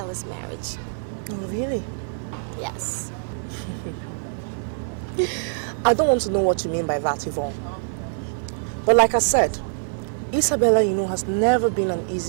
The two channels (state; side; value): silent; left; digital silence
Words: marriage. Oh, really? Yes. I don't want to know what you mean by that, Yvonne. But like I said, Isabella, you know, has never been an